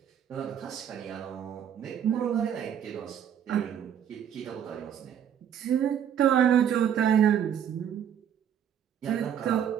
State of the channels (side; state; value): left; quieter; 9.1 dB